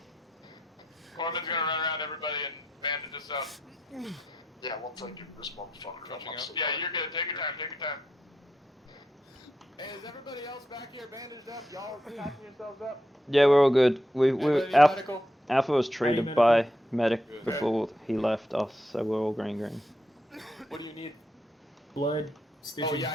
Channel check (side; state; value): both; normal; correlation 0.82